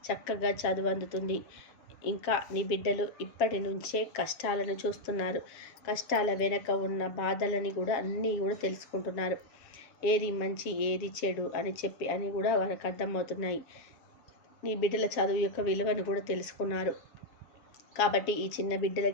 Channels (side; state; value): right; late; 7.2 ms